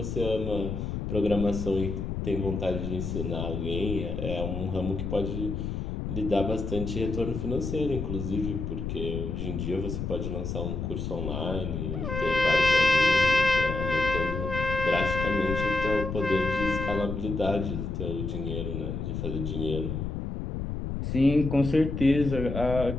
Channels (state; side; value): noise; left; rumble, 4 dB below the sound